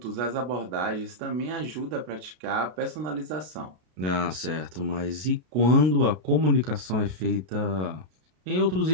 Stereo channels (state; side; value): late; left; 32 ms